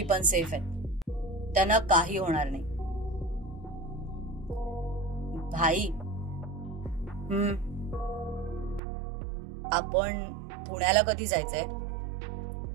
पण सेफ आहेत. त्यांना काही होणार नाही. भाई, आपण पुण्याला कधी जायचंय?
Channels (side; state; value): left; drops out; at 8.8 s